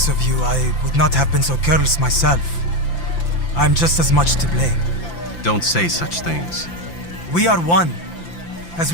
of you, I would not have been so careless myself. I'm just as much to blame. Don't say such things. We are one. As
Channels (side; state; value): right; late; 5.9 ms